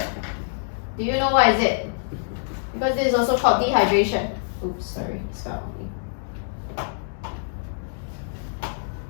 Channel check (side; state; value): right; silent; digital silence